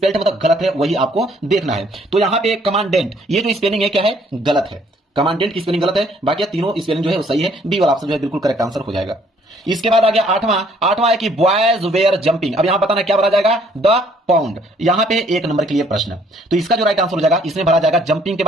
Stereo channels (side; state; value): both; normal; correlation 0.62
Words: मतलब गलत है, वही आपको देखना है। तो यहां पे कमांडेंट, ये जो स्पेलिंग है क्या है, गलत है, कमांडेंट की स्पेलिंग गलत है, बाकी तीनों स्पेलिंग जो है वो सही है, बी वाला ऑप्शन जो है बिल्कुल करेक्ट आंसर हो जाएगा। इसके बाद आ गया 8वां है कि बॉयज वेयर जंपिंग। अब यहां बताना क्या भरा जाएगा, द पाउंड, यहां पे एक नंबर के लिए प्रश्न, तो इसका जो राइट आंसर हो जाएगा इसमें भरा जाएगा जंपिंग के